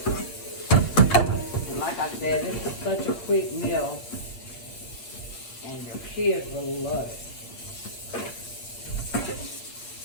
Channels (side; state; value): right; late; 8.2 ms